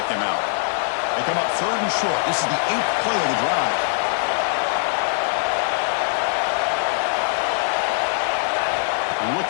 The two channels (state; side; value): silent; right; digital silence